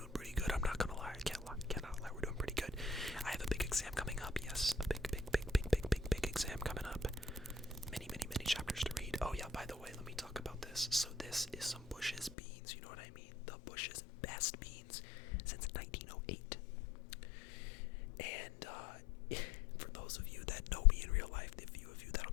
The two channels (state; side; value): drops out; right; at 12.4 s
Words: pretty good. I'm not gonna lie. Cannot lie. We're doing pretty good. I have a big exam coming up. Yes, a big exam coming up. Many chapters to read. Oh yeah, by the way, let me talk about this. So this is some Bush's beans. You know what I mean? The Bush's best beans since 1908. And for those of you that know me in real life, the few of you that'll